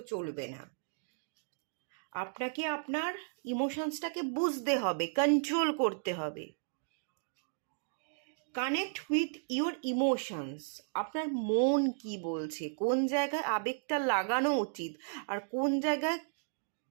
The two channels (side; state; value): left; silent; digital silence